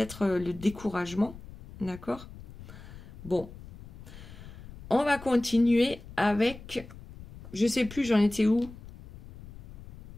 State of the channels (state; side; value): noise; left; rumble, 16 dB below the sound